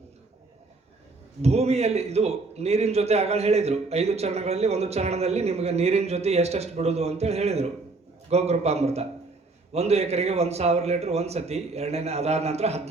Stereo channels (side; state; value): left; quieter; 3.6 dB